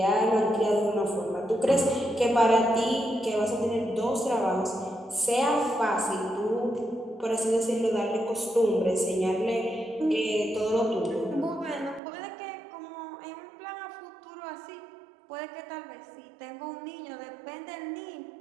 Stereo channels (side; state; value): left; drops out; at 12.0 s